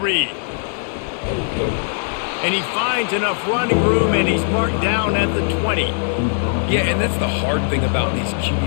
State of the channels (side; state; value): right; silent; 66 dB below the other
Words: And he finds enough running room, and he's marked down at the 20. Yeah, and that's the hard thing about these